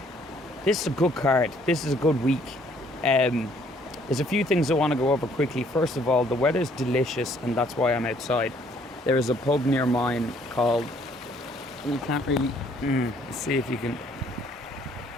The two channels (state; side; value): normal; both; correlation 0.63